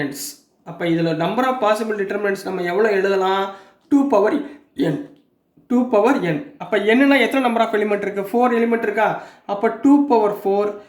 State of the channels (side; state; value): both; identical; correlation 1.00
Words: அப்போ இதில் நம்பர் ஆஃப் பாசிபிள் டிட்டர்மினன்ட்ஸ் நம்ம எவ்வளோ எழுதலாம்? 2n. 2n. அப்போ என்னன்னா எத்தனை நம்பர் ஆஃப் எலிமெண்ட் இருக்குது? 4 எலிமெண்ட் இருக்கா? அப்போ 2/4